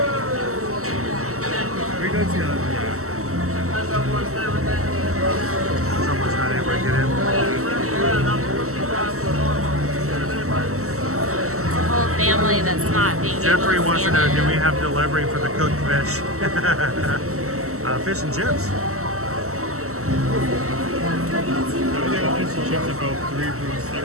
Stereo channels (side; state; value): left; late; 0.63 ms